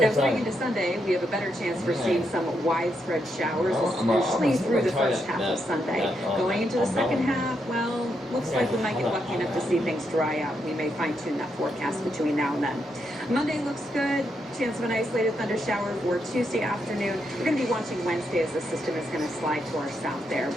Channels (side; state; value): both; normal; correlation 0.80